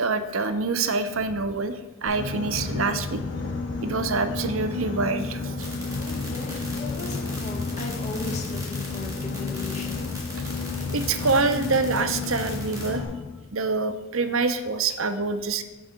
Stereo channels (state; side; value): normal; both; correlation 0.06